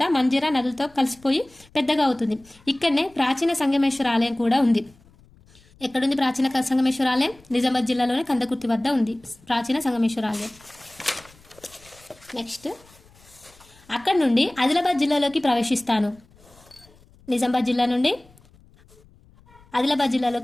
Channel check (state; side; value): noise; left; rumble, 28 dB below the sound